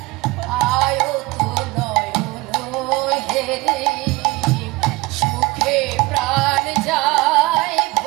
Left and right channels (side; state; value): left; quieter; 21.8 dB